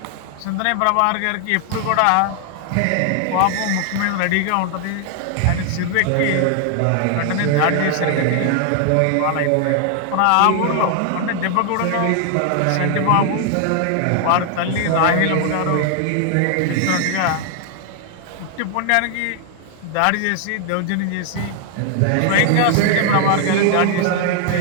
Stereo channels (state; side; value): different; both; correlation 0.00